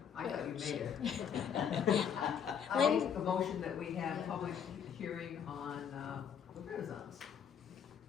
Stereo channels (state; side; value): quieter; right; 7.9 dB